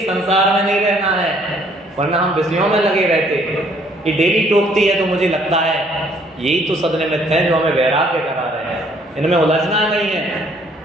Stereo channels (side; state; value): both; normal; correlation 0.63